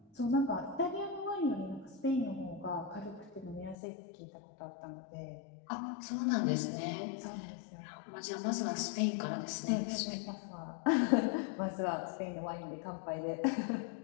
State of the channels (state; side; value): drops out; right; at 3.8 s